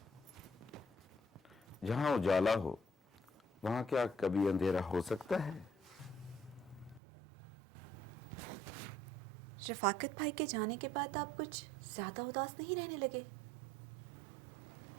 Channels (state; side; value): drops out; left; at 7.0 s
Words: जहाँ उजाला हो वहाँ क्या कभी अंधेरा हो सकता है? रफाकत भाई के जाने के बाद आप कुछ ज्यादा उदास नहीं रहने लगे?